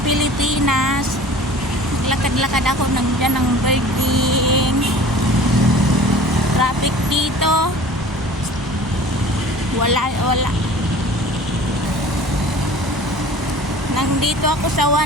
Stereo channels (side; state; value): both; normal; correlation 0.44